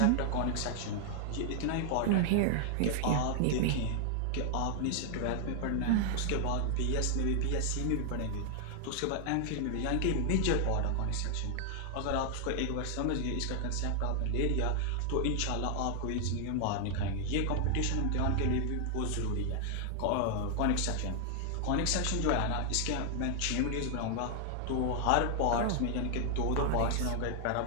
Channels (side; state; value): both; different; correlation 0.00